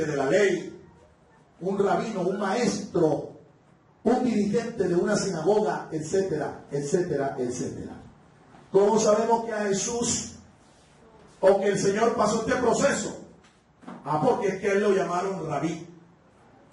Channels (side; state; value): both; identical; correlation 1.00